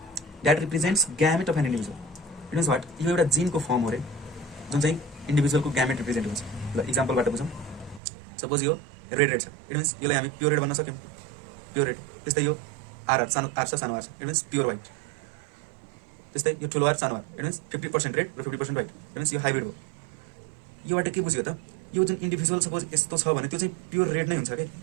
that represents gamete of an individual. It means what? यो एउटा जिनको फर्म हो रे, जुन चाहिँ इन्डिभिजुअलको ग्यामेट रिप्रेजेन्ट हुन्छ। ल इक्जाम्पलबाट बुझौँ। सपोज यो रेड रेड छ, इट मिन्स यसलाई हामी प्योर रेड भन्न सक्यौँ, प्योर रेड। त्यस्तै यो आर सानो आर छ, सानो आर छ, इट मिन्स प्योर वाइट। त्यस्तै यो ठुलो आर सानो आर, इट मिन्स 50% रेड र 50% वाइट, इट मिन्स यो हाइब्रिड हो। योबाट के बुझ्यो त? यो जुन इन्डिभिजुअल सपोज यस्तो छ भने त्यो चाहिँ प्योर रेड नै हुन्छ कि।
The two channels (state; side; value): drops out; left; at 8.0 s